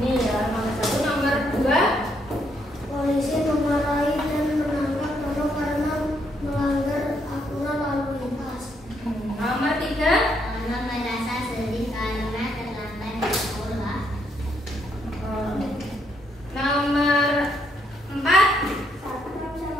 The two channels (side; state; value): both; normal; correlation 0.74